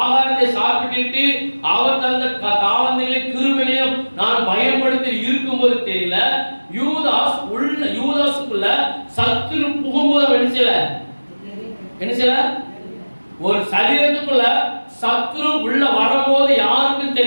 ஆகாரத்தை சாப்பிட்டு, அவர் தந்த தாவந்திகளை கிருபையும் நான் பயன்படுத்தி இருக்கும்போது தெரியல. யூதாஸுக்குள்ள சத்துரு புகும்போது என்ன செய்யல? ஒரு சரீரத்துக்குள்ள சத்துரு உள்ள வரும்போது யாருக்கும்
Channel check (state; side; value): inverted; both; correlation -1.00